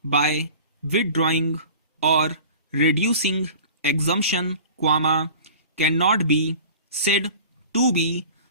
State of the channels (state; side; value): inverted; both; correlation -0.41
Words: by withdrawing or reducing exemption, cannot be said to be